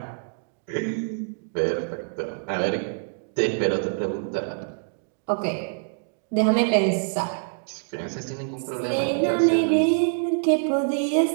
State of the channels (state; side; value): silent; left; digital silence